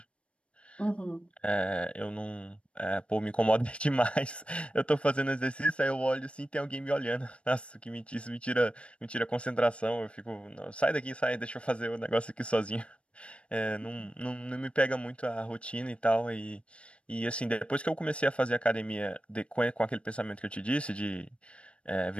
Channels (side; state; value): right; late; 0.060 ms